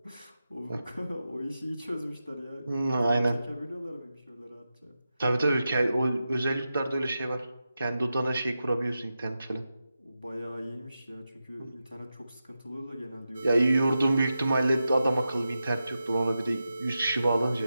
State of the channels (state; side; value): inverted; both; correlation -0.90